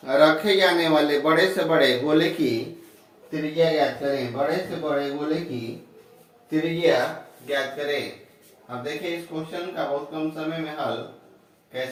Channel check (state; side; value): identical; both; correlation 1.00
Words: रखे जाने वाले बड़े से बड़े गोले की त्रिज्या ज्ञात करें। बड़े से बड़े गोले की त्रिज्या ज्ञात करें। अब देखिए इस क्वेश्चन का बहुत कम समय में हल